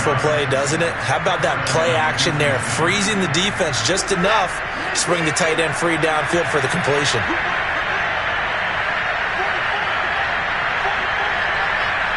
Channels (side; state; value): both; identical; correlation 1.00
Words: play, doesn't it? How about that play action there? Freezing the defense just enough to bring the tight end free downfield for the completion.